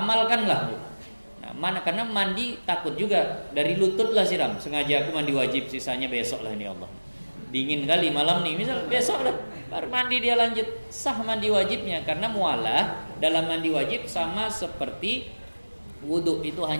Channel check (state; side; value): inverted; both; correlation -1.00